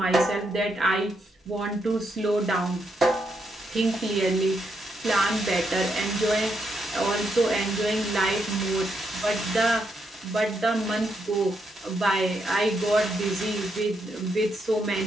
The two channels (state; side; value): normal; both; correlation 0.79